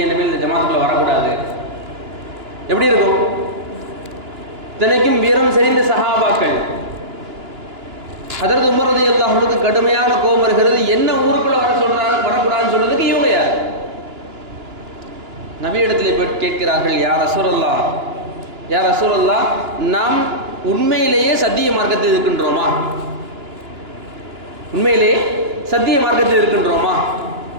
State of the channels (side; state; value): left; late; 2.9 ms